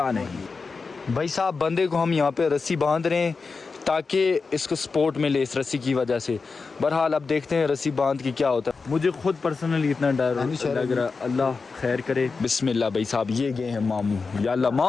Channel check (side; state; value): right; quieter; 4.5 dB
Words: नहीं। भाई साहब, बंदे को हम यहाँ पे रस्सी बांध रहे हैं ताकि इसको सपोर्ट मिले इस रस्सी की वजह से। बहरहाल अब देखते हैं रस्सी बांध के क्या होता है। मुझे खुद पर्सनली इतना डर लग रहा, अल्लाह खैर करे। बिस्मिल्लाह भाई साहब, ये गए हैं मामू। या अल्लाह,